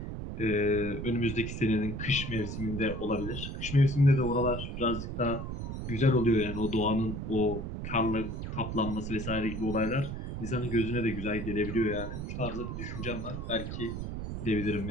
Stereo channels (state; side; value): noise; right; rumble, 5 dB below the sound